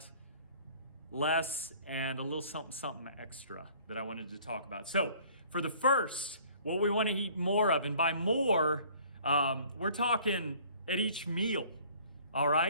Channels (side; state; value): both; inverted; correlation -0.54